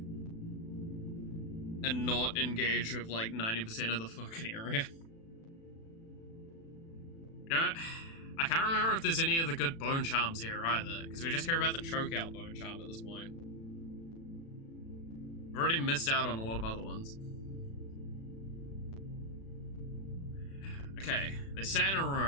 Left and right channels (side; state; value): right; late; 36 ms